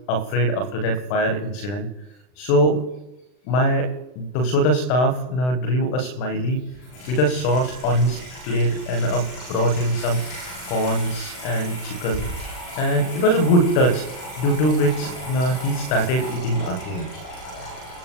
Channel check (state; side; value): late; right; 39 ms